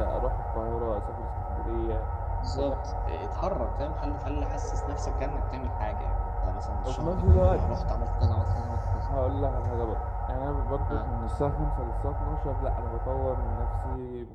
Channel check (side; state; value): both; identical; correlation 1.00